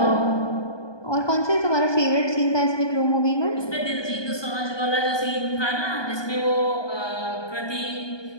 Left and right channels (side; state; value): right; late; 1.2 ms